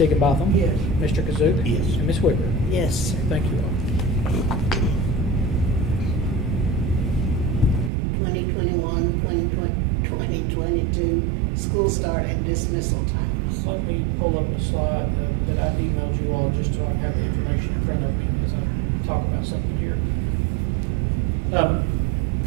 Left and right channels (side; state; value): left; drops out; at 7.9 s